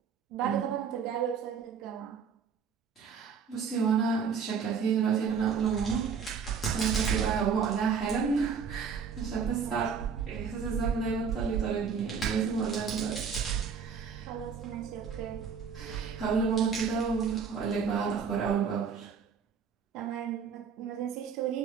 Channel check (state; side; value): quieter; left; 6.3 dB